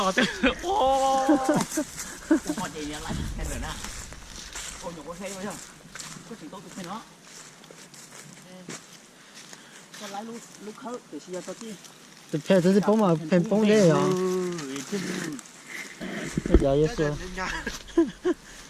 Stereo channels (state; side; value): identical; both; correlation 1.00